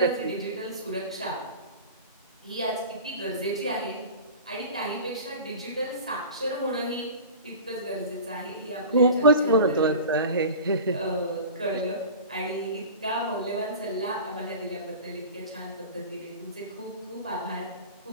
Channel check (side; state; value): both; inverted; correlation -0.36